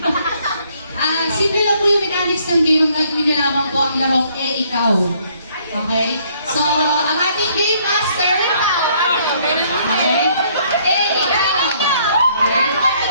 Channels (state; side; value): inverted; both; correlation -0.65